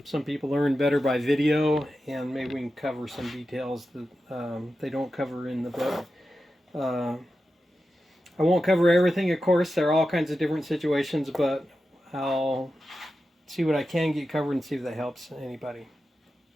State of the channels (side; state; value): both; normal; correlation 0.91